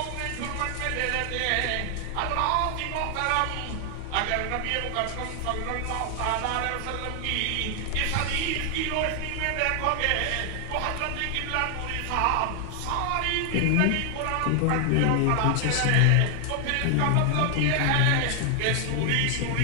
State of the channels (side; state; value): both; different; correlation 0.00